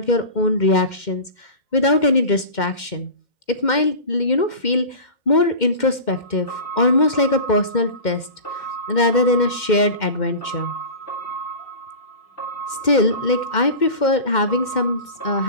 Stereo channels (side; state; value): right; late; 2.1 ms